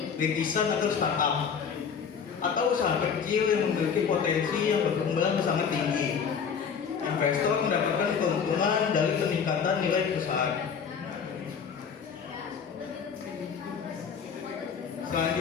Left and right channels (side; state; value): right; quieter; 6.7 dB